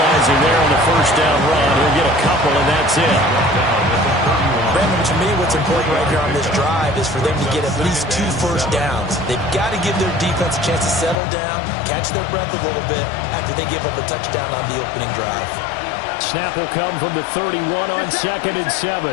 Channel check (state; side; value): drops out; right; at 11.2 s